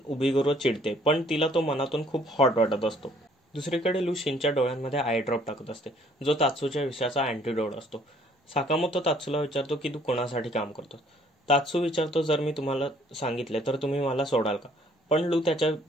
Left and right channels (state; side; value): normal; both; correlation 0.60